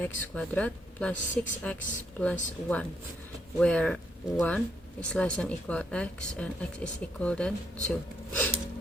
squared plus 6x plus 1, where 1 is less than equal x and x is equal than 2.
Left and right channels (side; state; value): both; normal; correlation 0.75